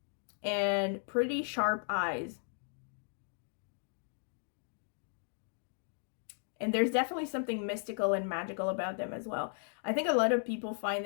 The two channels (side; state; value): right; silent; 54 dB below the other